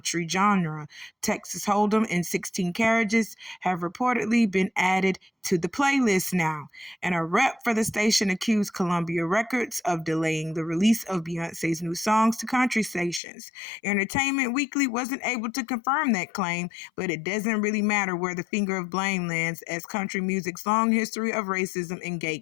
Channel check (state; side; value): drops out; right; at 13.2 s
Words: genre. Texas Hold'em and 16 Carriages have reportedly been added to the playlist now. And a rep for the station accused Columbia Records of delaying the release of Beyonce's new songs to country stations. Entertainment Weekly wasn't able to confirm that claim, but it doesn't really matter where the finger of blame lands, as country music's long history of racism and